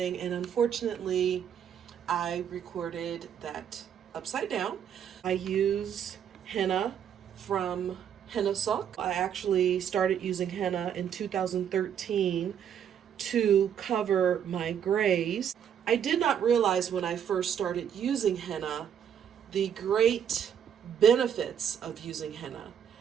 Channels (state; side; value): quieter; left; 8.7 dB